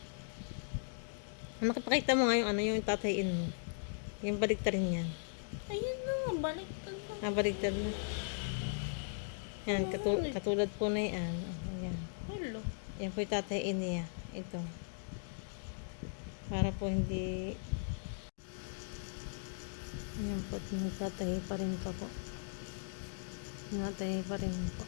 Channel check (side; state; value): right; silent; digital silence